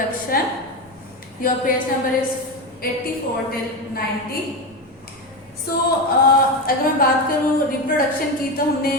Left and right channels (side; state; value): both; normal; correlation 0.16